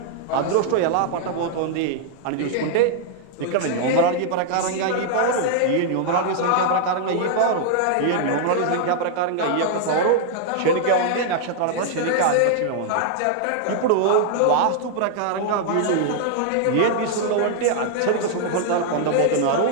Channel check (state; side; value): different; both; correlation -0.01